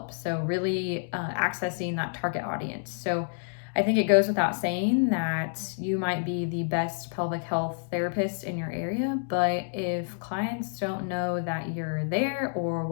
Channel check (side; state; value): right; silent; digital silence